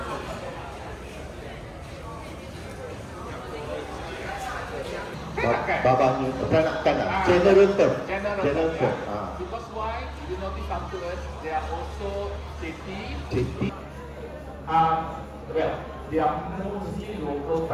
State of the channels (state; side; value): identical; both; correlation 1.00